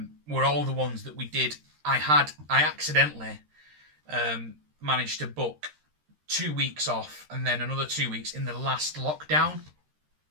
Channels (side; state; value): left; late; 13 ms